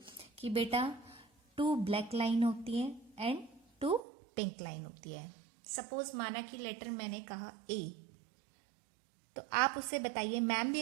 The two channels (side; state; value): left; drops out; at 4.0 s